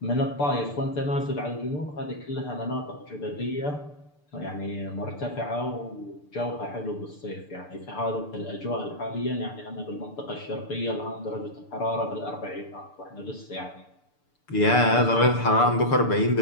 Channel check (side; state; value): right; late; 6.8 ms